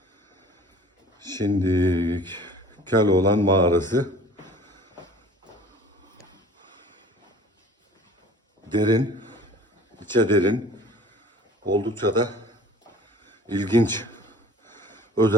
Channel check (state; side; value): normal; both; correlation 0.47